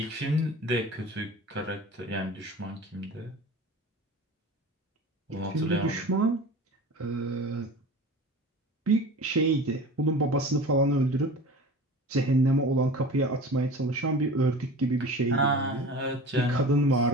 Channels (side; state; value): both; normal; correlation 0.37